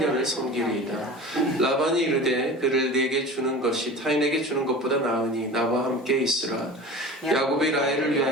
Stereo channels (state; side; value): normal; both; correlation 0.36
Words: 섬기리이다. 라반이 이르되 그를 내게 주는 것이 타인에게 주는 것보다 나으니 나와 함께 있으라. 야곱이 라헬을